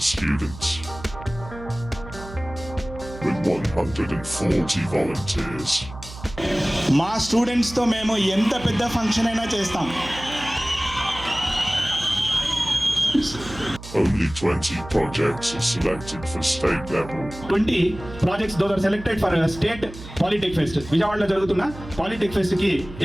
students. With 140 volunteers. మా స్టూడెంట్స్తో మేము ఎంత పెద్ద ఫంక్షన్ అయినా చేస్తాం. Only 20 projects are selected for state level. 20 projects those are selected for state Polytech Fest. విజయవాడలో జరుగుతున్న Polytech Fest కి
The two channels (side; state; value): right; noise; hum, 14 dB below the sound